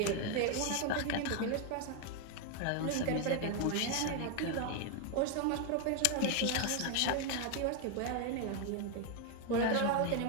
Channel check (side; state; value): both; different; correlation 0.01